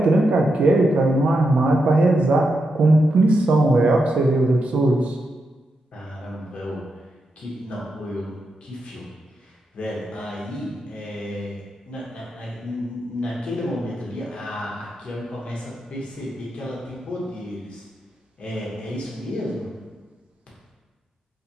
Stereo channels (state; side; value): normal; both; correlation 0.85